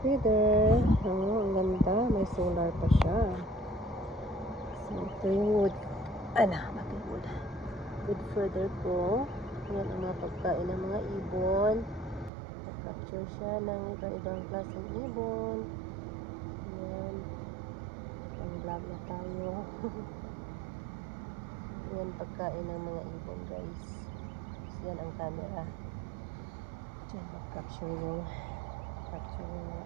feeder. Ang ganda. May solar pa siya. So, ito yung wood. Wood. Wood feeder ko. Yan ang mga pagkain ng mga ibon. Nag-capture siya ng iba-ibang klaseng ibon. Yan. Pang-vlog na tayo. Yan pagkain ng mga ibon, guys. So, yan ang camera. Diyan mag-capture yung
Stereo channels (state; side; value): drops out; left; at 12.3 s